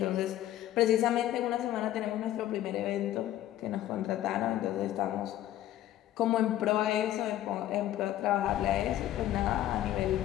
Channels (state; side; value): quieter; right; 13.2 dB